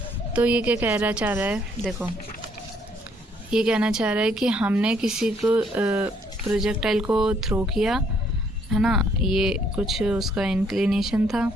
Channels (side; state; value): both; normal; correlation 0.67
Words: तो ये क्या कहना चाह रहा है, देखो ये कहना चाह रहा है कि हमने किसी को प्रोजेक्टाइल को थ्रो किया है ना, ये कुछ उसका इंक्लिनेशन था,